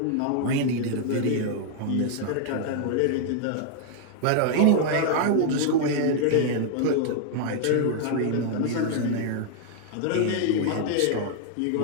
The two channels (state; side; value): different; both; correlation 0.00